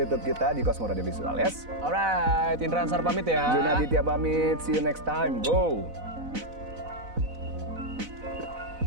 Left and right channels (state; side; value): late; left; 4.0 ms